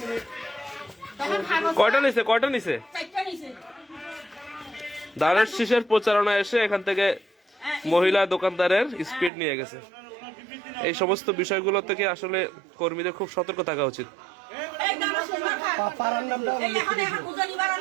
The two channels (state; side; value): drops out; left; at 9.3 s